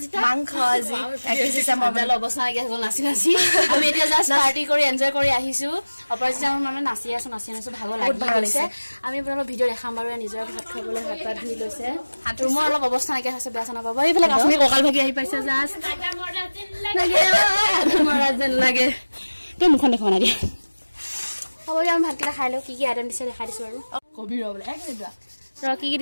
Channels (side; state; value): both; inverted; correlation -1.00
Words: মাংস আজি 31 ডিসেম্বৰ মজা অৱস্থা লাগি আছে নাচি নাচি আমি এতিয়া জাস্ট পাৰ্টি কৰি এনজয় কৰি আহিছো অপৰাজিতা মানে নাচি আছো ভাগৰ লাগি গৈছে আমি আপোনালোকক ভিডিঅ' দেখাম বাৰু নিজৰ ভাত খাবলৈ হাত পাত ধুই লৈছে ৰুমৰ অলপ অৱস্থা নাকি হৈছে বেয়া চানা পাব এইফালে কাশ্মীৰ ককাল ভাগি আহি পাইছে জাস্ট মৰা যেন লাগে তই মুখন দেখা না দিয়া হ'ব আমি ভাতকেইটা খাই লওঁ কি কি আইটেম দিছে দেখাই দিছো আৰু কবি ৰ বোলে এক মিনিট ৰ কি কি